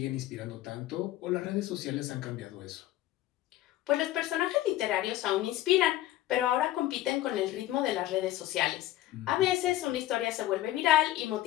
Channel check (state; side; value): quieter; right; 14.6 dB